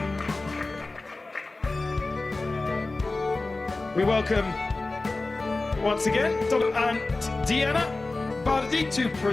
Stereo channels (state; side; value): quieter; right; 3.3 dB